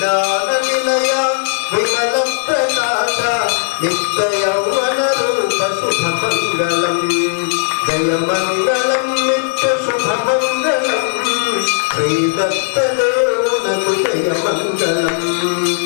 నిలయ విమల ప్రకాశ నిత్య యౌవన శ్రీదత్తదేవునకు జయమంగళం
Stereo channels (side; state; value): right; silent; 65 dB below the other